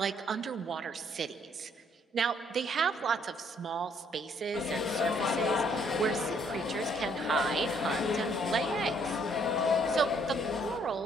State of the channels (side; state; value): both; normal; correlation 0.66